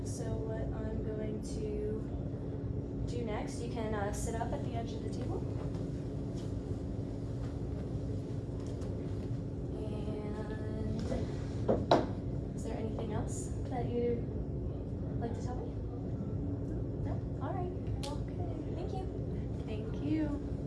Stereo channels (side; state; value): both; identical; correlation 1.00